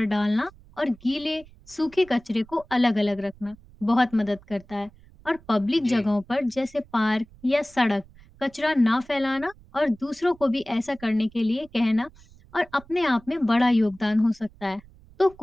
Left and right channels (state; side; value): noise; right; rumble, 25 dB below the sound